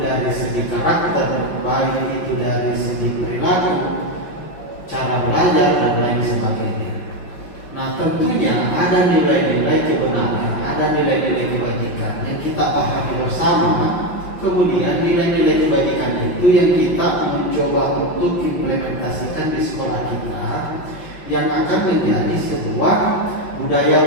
dari segi karakter, baik itu dari segi perilaku, cara belajar dan lain sebagainya. Nah, tentunya ada nilai-nilai kebenaran, ada nilai-nilai kebajikan yang kita pahami bersama. Kemudian nilai-nilai kebajikan itu yang kita mencoba untuk implementasikan di sekolah kita, yang akan menjadi sebuah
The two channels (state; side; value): late; right; 5.9 ms